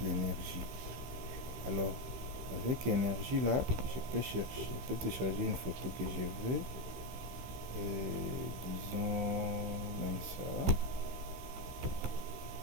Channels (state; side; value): late; left; 15 ms